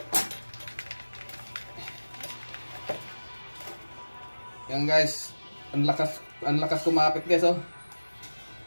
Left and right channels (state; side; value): inverted; both; correlation -1.00